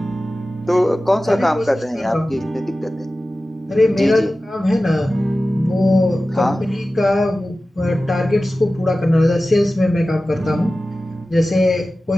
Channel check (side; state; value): both; normal; correlation 0.95